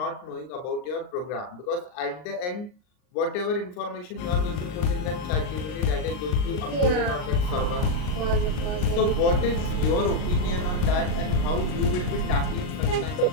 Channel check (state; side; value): late; right; 39 ms